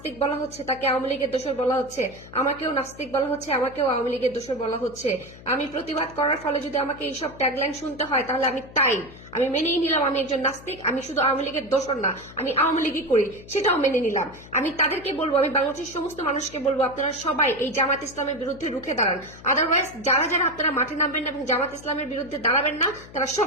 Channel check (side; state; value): left; noise; hum, 18 dB below the sound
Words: বলা হচ্ছে, তাকে আওয়ামী লীগের দোসর বলা হচ্ছে, আমাকেও নাস্তিক বলা হচ্ছে, আমাকেও আওয়ামী লীগের দোসর বলা হচ্ছে। আমি প্রতিবাদ করার ফলে যদি আমাকে এইসব ট্যাগলাইন শুনতে হয় তাহলে আমি মেনেই নিলাম আমি একজন নাস্তিক, আমি শুধু আওয়ামী লীগের দোসর না, আমি আওয়ামী লীগই করি, সেটাও মেনে নিলাম। আমি তাদেরকে বলবো, আমি বাংলাদেশের সমস্ত মানুষকে বলবো, আপনারা সবাই এই জামাত ইসলামের বিরুদ্ধে রুখে দাঁড়ান। আদারওয়াইজ যারা যারা আপনারা মাঠে নামবেন না এবং জামাত ইসলামের বিরুদ্ধে দাঁড়াবেন না, তারা